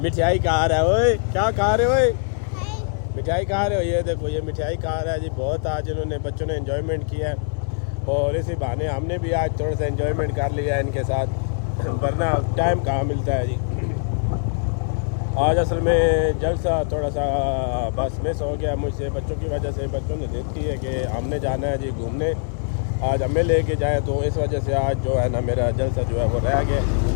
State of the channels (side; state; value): right; silent; digital silence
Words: मिठाई खा रहा है। ओए क्या खा रहे हो? मिठाई खा रहे हो? ये देखो ये मिठाई खा रहा है जी। बहुत आज इन्होंने बच्चों ने एंजॉयमेंट किया है और इसी बहाने हमने भी आज थोड़ा सा एंजॉयमेंट कर लिया है इनके साथ, वरना टाइम कहाँ मिलता है जी। आज असल में जलसा थोड़ा सा बस मिस हो गया मुझसे बच्चों की वजह से। बच्चों ने जिद की है कि हमने जाना है जी घूमने, आज हमें लेके जाए, तो इस वजह से आज जो है ना मेरा जलसा जो है वो रह गया।